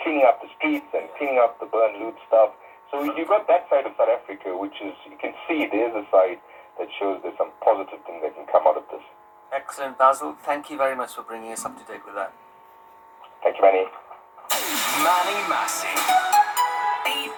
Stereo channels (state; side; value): identical; both; correlation 1.00